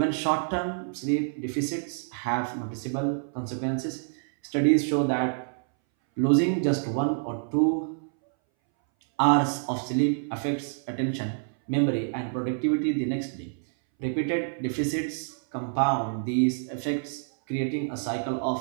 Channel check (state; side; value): silent; left; 60 dB below the other